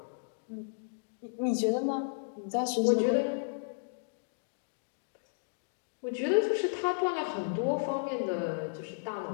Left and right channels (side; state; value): right; silent; digital silence